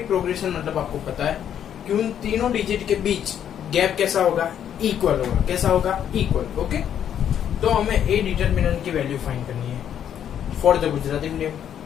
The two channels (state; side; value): quieter; right; 9.5 dB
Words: प्रोग्रेशन मतलब आपको पता है कि उन तीनों डिजिट के बीच गैप कैसा होगा, इक्वल होगा। कैसा होगा, इक्वल। ओके, तो हमें ए डिटरमिनेंट की वैल्यू फाइंड करनी है फॉर द गुजराती मीडियम।